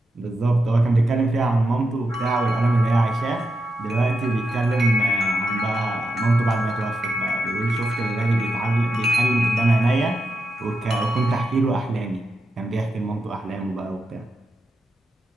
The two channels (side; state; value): both; normal; correlation 0.87